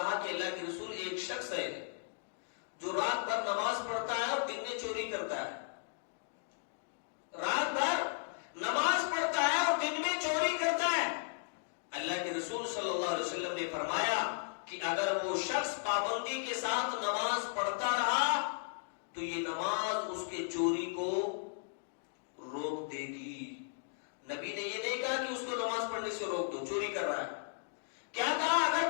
کہ اللہ کے رسول، ایک شخص ہے جو رات بھر نماز پڑھتا ہے اور دن میں چوری کرتا ہے، رات بھر نماز پڑھتا ہے اور دن میں چوری کرتا ہے۔ اللہ کے رسول صلی اللہ علیہ وسلم نے فرمایا کہ اگر وہ شخص پابندی کے ساتھ نماز پڑھتا رہا تو یہ نماز اس کے چوری کو روک دے گی۔ نبی نے یہ نہیں کہا کہ اس کو نماز پڑھنے سے روک دو، چوری کر رہا ہے، کیا کہا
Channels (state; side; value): silent; right; digital silence